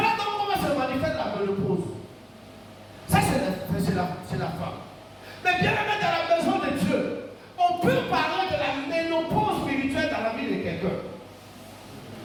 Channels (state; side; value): identical; both; correlation 1.00